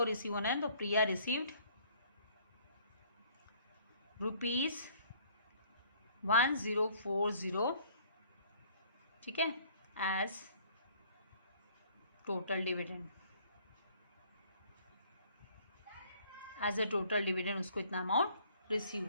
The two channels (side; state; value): both; inverted; correlation -0.58